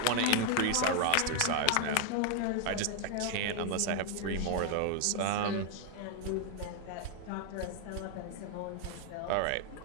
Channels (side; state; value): both; different; correlation 0.00